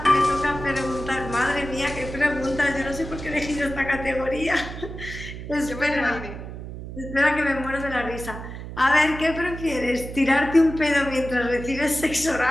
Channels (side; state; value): right; noise; hum, 10 dB below the sound